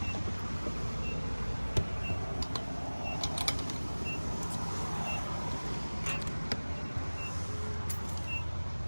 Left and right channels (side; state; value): both; inverted; correlation -1.00